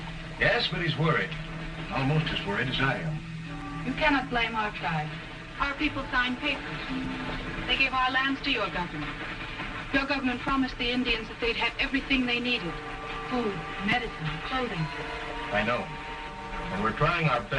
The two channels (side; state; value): both; identical; correlation 1.00